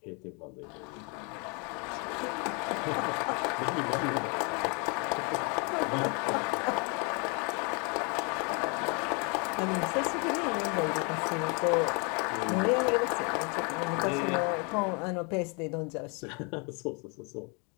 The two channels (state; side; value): quieter; right; 33.6 dB